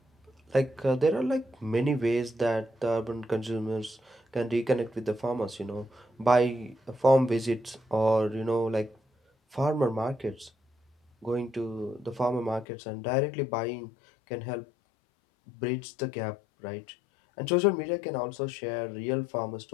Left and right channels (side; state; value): right; drops out; at 12.7 s